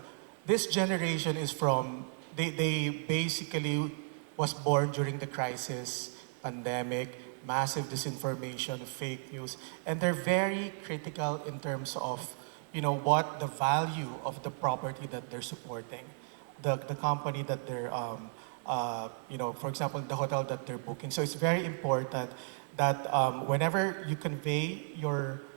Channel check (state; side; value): silent; left; digital silence